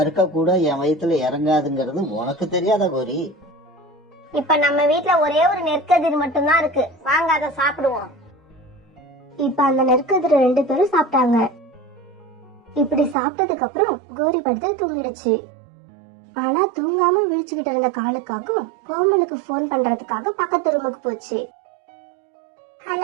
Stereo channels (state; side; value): drops out; left; at 13.2 s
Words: கூட என் வயித்துல இறங்காதுங்கிறது உனக்கு தெரியாதா கோரி? இப்ப நம்ம வீட்ல ஒரே ஒரு நெற்கதிர் மட்டும்தான் இருக்கு. வாங்க அதை சாப்பிடுவோம். இப்ப அந்த நெற்கதிர 2 பேரும் சாப்பிட்டாங்க. இப்படி சாப்பிட்டதுக்கு அப்புறம் கோரி படுத்து தூங்கிடுச்சு. ஆனா தூங்காம விழிச்சுக்கிட்டு இருந்த காலுக்காக கோமலுக்கு போன் பண்றதுக்காக பக்கத்து ரூமுக்கு போச்சு.